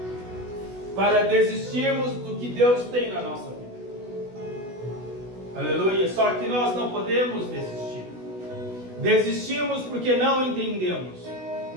para desistirmos do que Deus tem na nossa vida. Aleluia. Só que nós não podemos desistir. Desistimos porque não entendemos,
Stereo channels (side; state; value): left; late; 16 ms